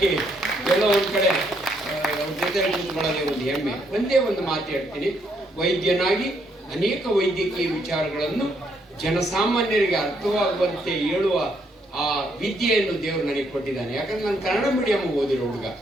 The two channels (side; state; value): both; normal; correlation 0.73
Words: ಎಲ್ಲೋ ಒಂದ್ ಕಡೆ ಅವ್ರ ಜೊತೆ ಕೂತ್ಕೊಳ್ಳೋದೇ ಒಂದು ಹೆಮ್ಮೆ. ಒಂದೇ ಒಂದು ಮಾತು ಹೇಳ್ತೀನಿ, ವೈದ್ಯನಾಗಿ ಅನೇಕ ವೈದ್ಯಕೀಯ ವಿಚಾರಗಳನ್ನು ಜನಸಾಮಾನ್ಯರಿಗೆ ಅರ್ಥವಾಗುವಂತೆ ಹೇಳುವ ಆ ವಿದ್ಯೆಯನ್ನು ದೇವರು ನನಗೆ ಕೊಟ್ಟಿದ್ದಾನೆ. ಯಾಕಂದ್ರೆ ನಾನು ಕನ್ನಡ ಮೀಡಿಯಂ ಓದಿರೋ ಹುಡುಗ.